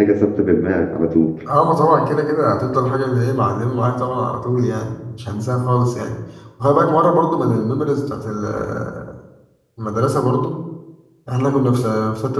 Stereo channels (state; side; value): identical; both; correlation 1.00